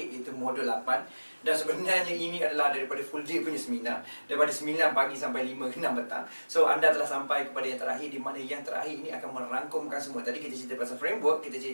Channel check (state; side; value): inverted; both; correlation -1.00